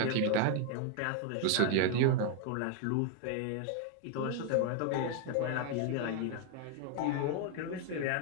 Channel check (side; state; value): both; different; correlation 0.00